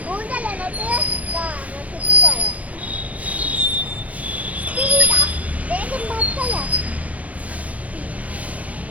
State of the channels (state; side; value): late; left; 0.069 ms